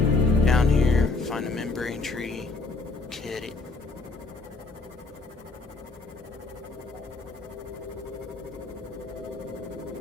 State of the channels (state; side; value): quieter; right; 3.7 dB